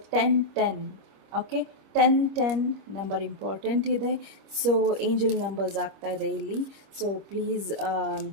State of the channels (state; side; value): late; left; 25 ms